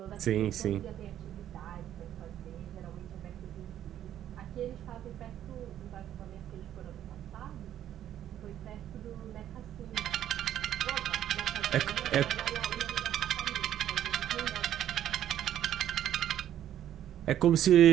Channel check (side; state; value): left; quieter; 11.2 dB